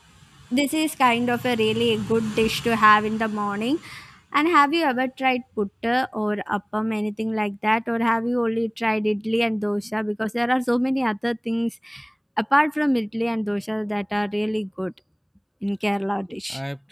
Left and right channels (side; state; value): both; identical; correlation 1.00